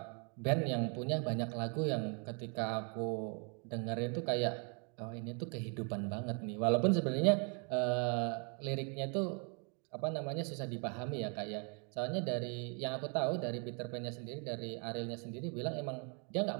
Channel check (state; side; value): quieter; left; 36.6 dB